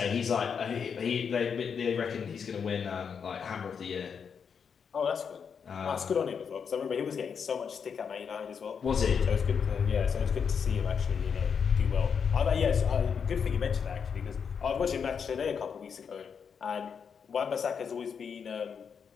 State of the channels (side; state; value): right; quieter; 6.6 dB